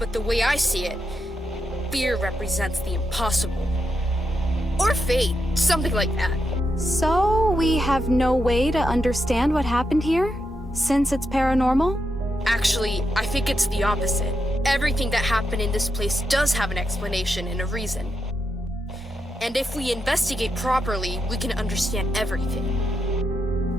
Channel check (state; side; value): normal; both; correlation 0.84